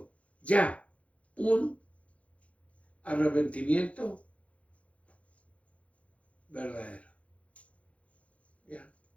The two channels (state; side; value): late; right; 0.064 ms